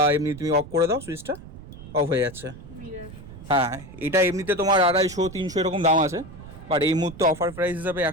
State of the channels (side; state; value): right; noise; rumble, 16 dB below the sound